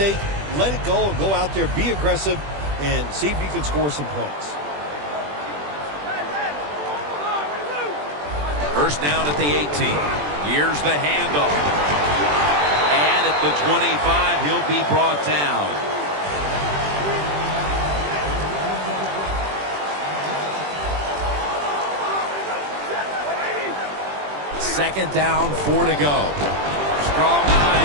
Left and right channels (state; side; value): late; left; 20 ms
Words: let it go, and go out there, be aggressive, and see if you can score some points. First down at the 18. Here's the handoff. And at the 25, he'll be brought down. Second down, 4 to go. Strong